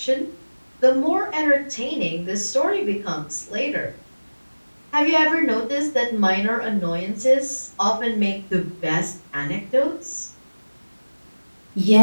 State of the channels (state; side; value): inverted; both; correlation -1.00